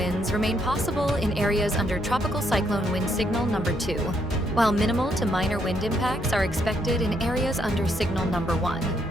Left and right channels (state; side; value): normal; both; correlation 0.74